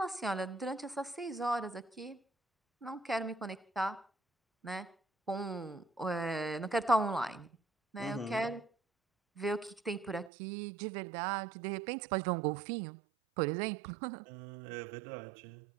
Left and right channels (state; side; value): drops out; left; at 10.3 s